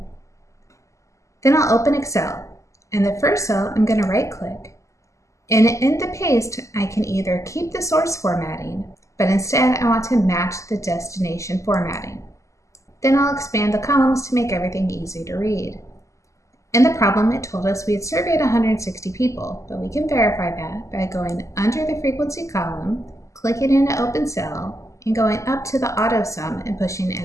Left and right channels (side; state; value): right; late; 0.15 ms